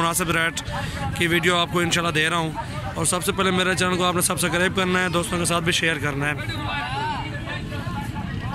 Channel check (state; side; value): identical; both; correlation 1.00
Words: रेट की वीडियो आपको इंशाल्लाह दे रहा हूँ। और सबसे पहले मेरे चैनल को आपने सब्सक्राइब करना है, दोस्तों के साथ भी शेयर करना है।